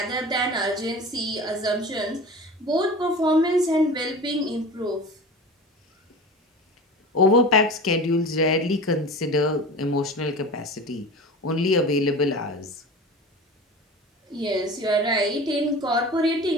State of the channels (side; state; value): both; normal; correlation 0.34